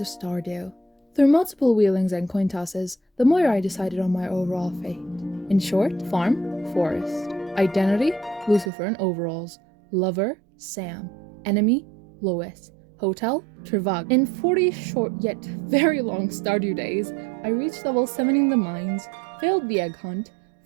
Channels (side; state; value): left; drops out; at 8.7 s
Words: Stardew. Through multiple wheelings and coin tosses, the more I decided on my overall fate. In short, farm, forest. Identity, Lucifer in overalls. Lover, Sam. Enemy, Lois. Hotel, Trevag. In 40 short yet very long Stardew days, I reached level 7 in the mines, failed the egg hunt,